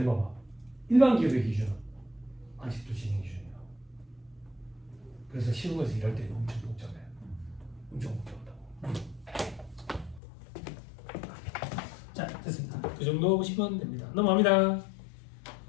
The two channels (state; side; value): drops out; right; at 10.2 s